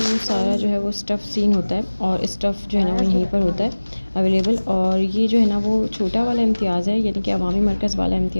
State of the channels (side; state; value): both; inverted; correlation -1.00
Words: सारा जो है वो स्टफ़ सीन होता है, और स्टफ़ जो है ना वो यहीं पर होता है अवेलेबल। और ये जो है ना वो छोटा वाला इम्तियाज़ है, यानी कि अवामी मरकज़ वाला